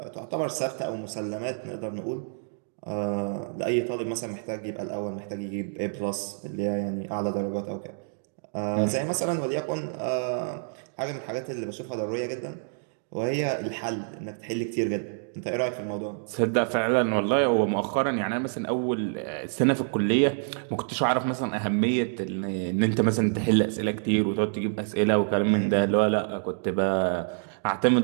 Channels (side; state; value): left; silent; digital silence